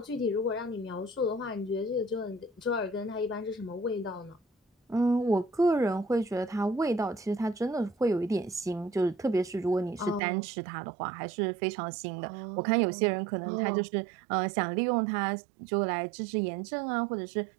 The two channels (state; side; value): drops out; left; at 10.2 s